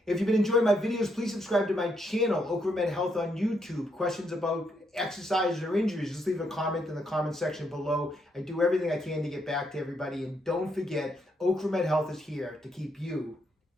If you've been enjoying my videos, please subscribe to my channel, Ocramed Health on YouTube. Questions about exercises or injuries, just leave a comment in the comment section below. I do everything I can to get back to everybody. And don't forget, Ocramed Health is here to keep you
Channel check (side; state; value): both; normal; correlation 0.76